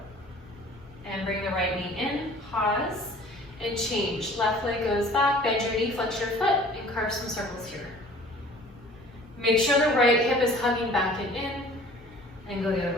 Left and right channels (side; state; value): both; normal; correlation 0.49